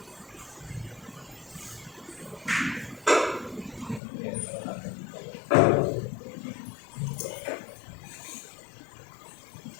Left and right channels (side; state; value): right; drops out; at 4.0 s